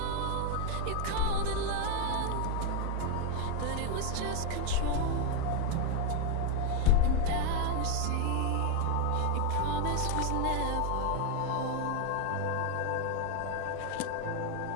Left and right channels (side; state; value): both; different; correlation 0.01